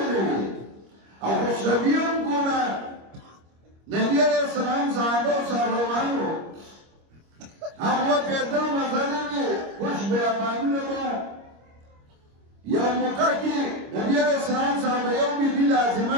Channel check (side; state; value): left; late; 25 ms